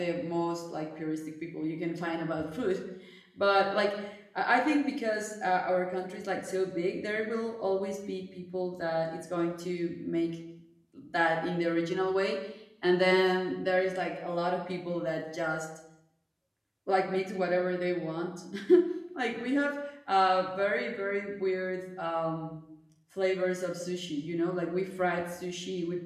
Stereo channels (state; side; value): identical; both; correlation 1.00